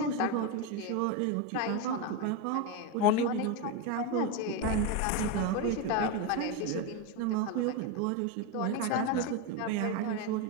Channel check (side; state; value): both; different; correlation 0.04